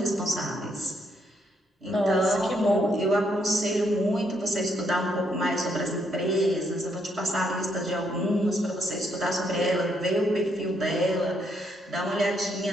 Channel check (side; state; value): both; normal; correlation 0.74